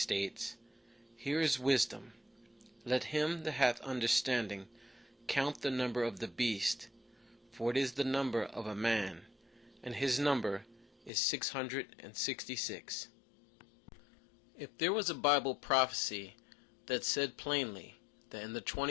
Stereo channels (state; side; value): drops out; right; at 11.1 s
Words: "Here is wisdom. Let him that hath understanding count the number of the beast, for it is the number of a man, and his number is 666. If there was a Bible prophecy that said plainly that in the